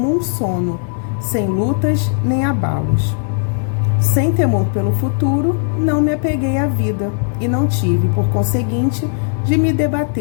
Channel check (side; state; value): right; silent; 64 dB below the other